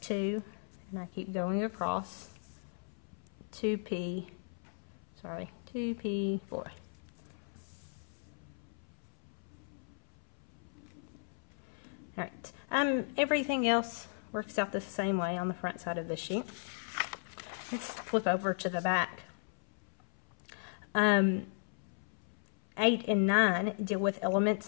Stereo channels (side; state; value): right; silent; 54 dB below the other